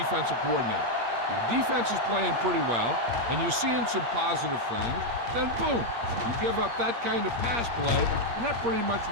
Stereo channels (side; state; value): left; late; 8.5 ms